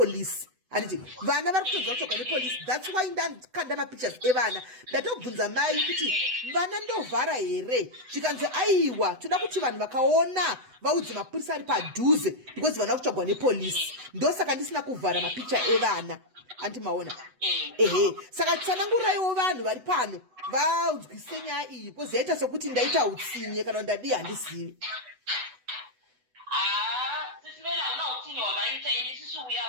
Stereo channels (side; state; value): left; late; 8.0 ms